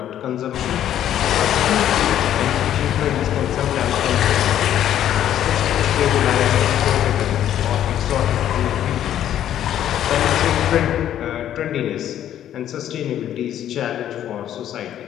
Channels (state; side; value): quieter; right; 11.1 dB